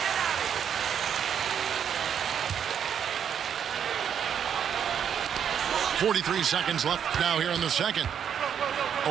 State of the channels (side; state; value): left; quieter; 8.3 dB